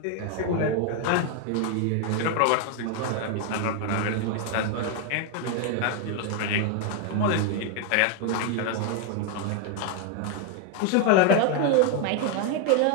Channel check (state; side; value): different; both; correlation 0.01